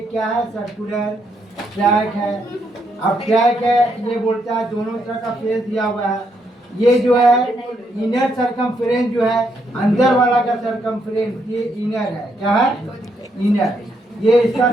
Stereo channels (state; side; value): normal; both; correlation 0.76